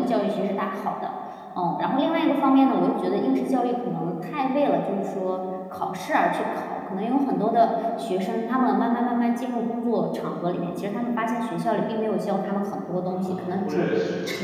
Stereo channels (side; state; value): both; identical; correlation 1.00